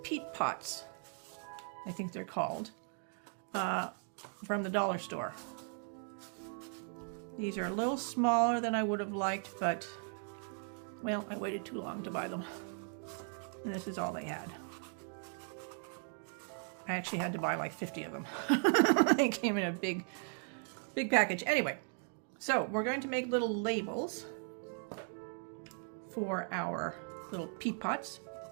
peat pots, I think they're called, from the dollar store. These are a little smaller than I would have liked, but, well, I waited too long to buy them. And this is all they had. I actually had to buy like 50 of them. They came in a big package. Anyway, so we're going to make little labels for our little peat pots.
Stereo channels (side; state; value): left; silent; 53 dB below the other